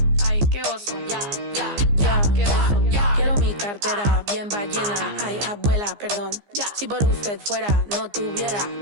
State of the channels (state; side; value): late; left; 15 ms